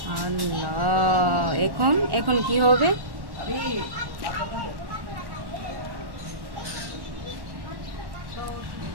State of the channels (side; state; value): left; late; 1.1 ms